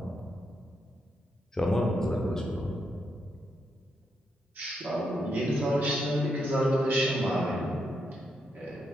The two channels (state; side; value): normal; both; correlation 0.81